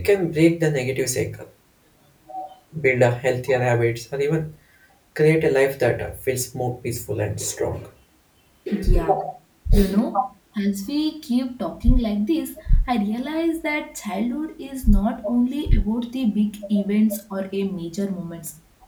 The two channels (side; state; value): both; identical; correlation 1.00